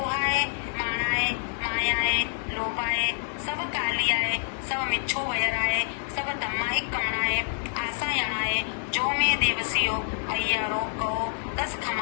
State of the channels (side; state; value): right; silent; 60 dB below the other